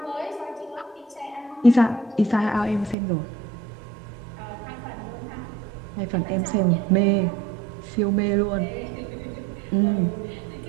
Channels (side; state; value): left; drops out; at 3.0 s